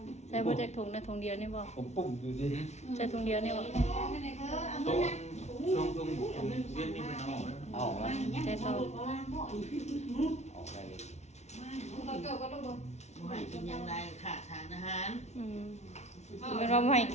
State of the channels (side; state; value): right; late; 0.32 ms